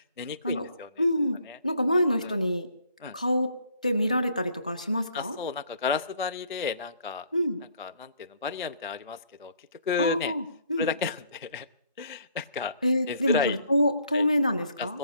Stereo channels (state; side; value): inverted; both; correlation -0.63